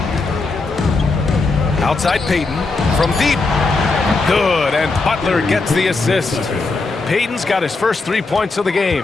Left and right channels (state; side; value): quieter; right; 3.7 dB